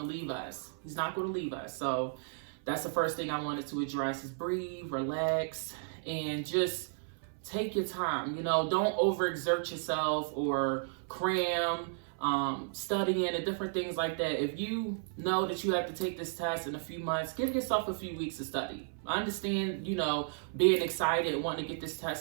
leave us. He's not going to leave us. So that's the first thing I wanted to address, is breathe, relax, and just take your time. Don't overexert yourself or cram, studying and different things like that. If you know that you have to take this test in a few months, give yourself a few weeks to study. I understand, being excited and wanting to get this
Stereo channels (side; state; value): left; silent; 55 dB below the other